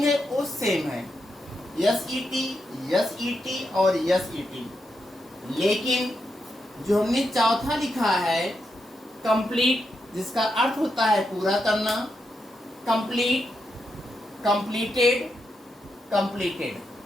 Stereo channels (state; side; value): normal; both; correlation 0.84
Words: है वो सेम है, SET, SET और SET। लेकिन जो हमने चौथा लिखा है कंप्लीट, जिसका अर्थ होता है पूरा करना। Complete, completed, completed.